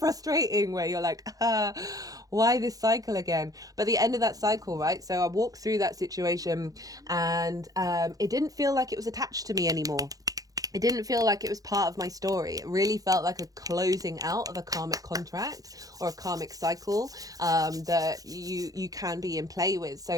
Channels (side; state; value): left; late; 0.17 ms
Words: where you're like, why this cycle again? But the end of that cycle, right? So I walked through that situation, and it didn't feel like it was attached to me anymore. It didn't feel like it was part of my story. It really felt like a closing out of a karmic contract or a karmic cycle that you can be in play with.